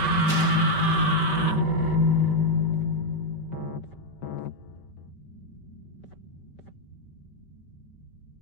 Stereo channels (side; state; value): right; late; 5.2 ms